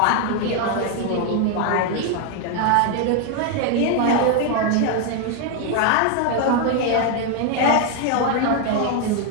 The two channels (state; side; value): different; both; correlation 0.01